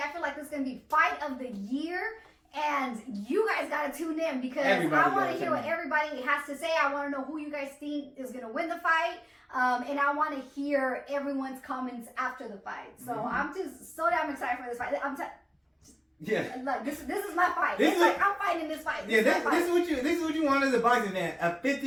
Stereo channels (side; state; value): both; identical; correlation 1.00